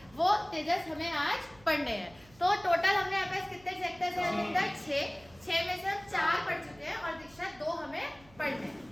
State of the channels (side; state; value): right; noise; hum, 26 dB below the sound